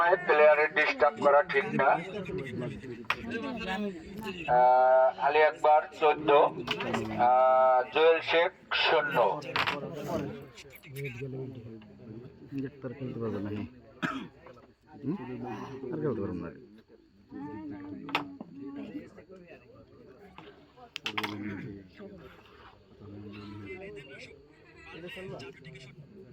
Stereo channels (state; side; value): identical; both; correlation 1.00